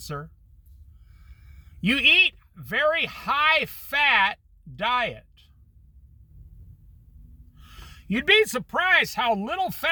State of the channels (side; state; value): both; identical; correlation 1.00